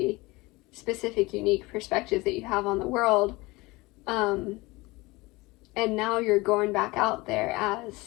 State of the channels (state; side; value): quieter; right; 22.5 dB